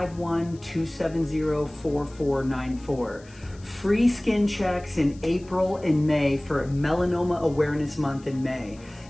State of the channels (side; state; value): left; noise; hiss, 26 dB below the sound